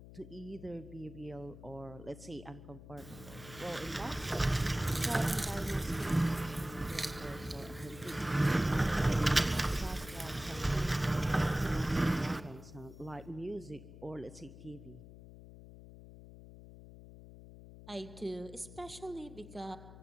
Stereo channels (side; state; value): left; noise; hum, 16 dB below the sound